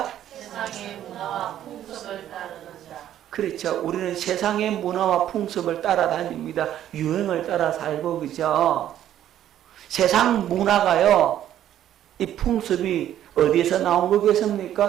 세상의 문화와 풍습을 따르는 자. 그렇죠. 우리는 세상의 문화와 풍습을 따라다닙니다. 유행을 따라 살고, 그죠? 세상 문화가요, 이 풍습이 어디에서 나온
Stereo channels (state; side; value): quieter; left; 11.5 dB